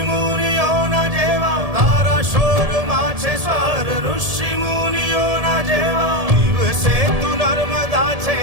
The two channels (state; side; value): late; left; 1.7 ms